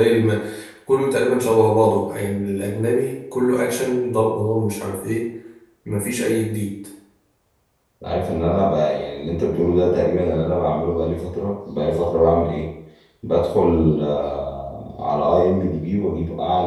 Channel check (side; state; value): both; identical; correlation 1.00